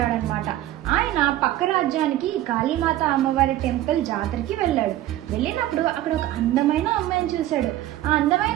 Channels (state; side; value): quieter; left; 14.1 dB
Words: అనమాట. ఆయన పక్క రాజ్యానికి కాళీమాత అమ్మవారి టెంపుల్ జాతరకి వెళ్ళాడు. వెళ్ళినప్పుడు అక్కడ ఒక అందమైన అమ్మాయిని చూశాడు. ఆ